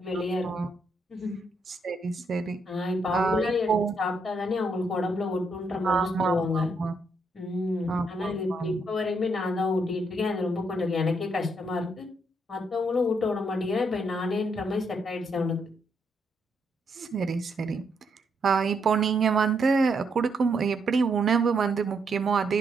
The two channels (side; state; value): both; normal; correlation 0.76